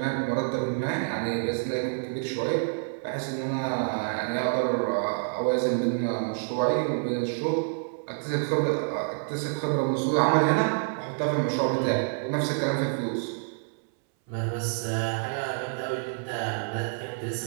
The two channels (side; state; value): left; silent; 59 dB below the other